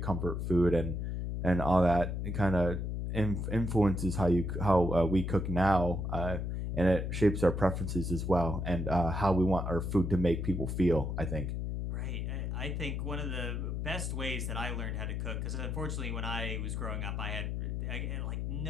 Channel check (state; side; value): noise; left; hum, 2 dB below the sound